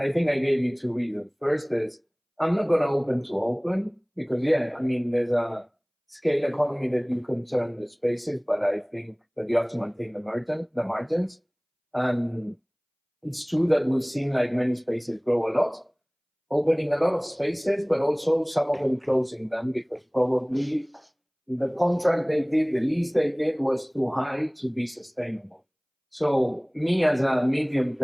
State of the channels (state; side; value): identical; both; correlation 1.00